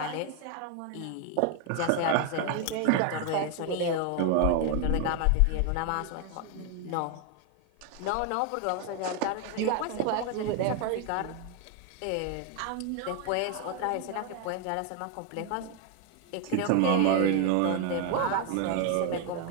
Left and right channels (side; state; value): both; different; correlation 0.01